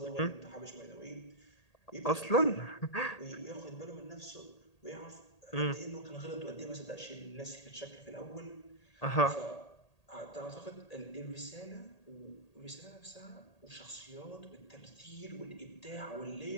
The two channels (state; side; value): late; right; 1.8 ms